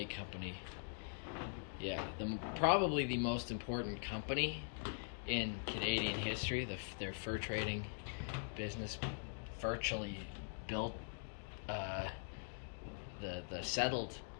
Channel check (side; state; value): right; silent; digital silence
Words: Company, yeah, probably the most important company in Canadian history. Their fur trading business virtually built the settled